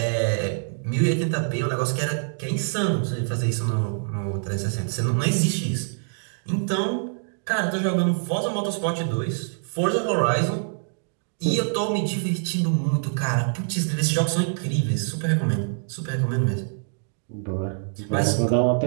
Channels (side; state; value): left; silent; digital silence